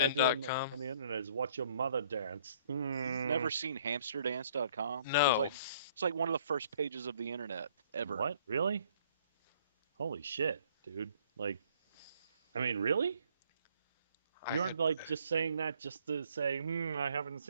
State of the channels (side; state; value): both; inverted; correlation -0.61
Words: I do spin.com? on the internet is watch your mother dance. You've never seen hamsterdance.com? No. It's like one of the first pages of the internet ever. What? Really? Holy shit, dude. Like, I mean, really? You I aren't like just saying that just to say, I haven't